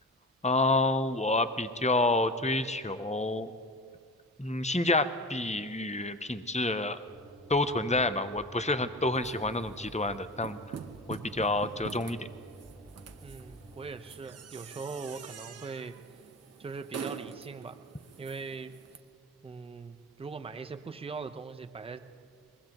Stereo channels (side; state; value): both; normal; correlation 0.30